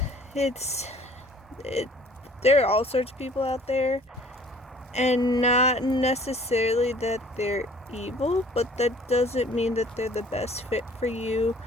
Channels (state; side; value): normal; both; correlation 0.53